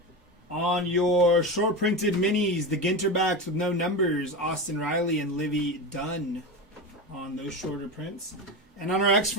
On your short printed minis, the Ginterbacks with no numbers, Austin Riley and Livy Dunn on those shorter prints. And on our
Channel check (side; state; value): both; normal; correlation 0.21